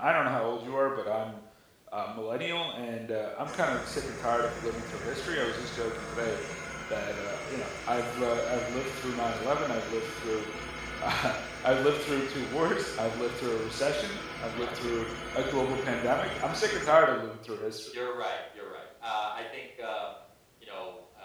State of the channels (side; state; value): both; identical; correlation 1.00